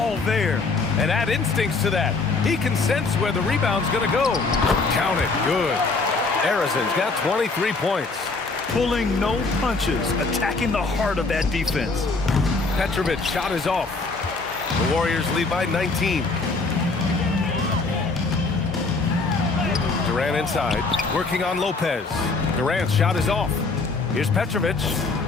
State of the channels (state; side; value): quieter; right; 3.9 dB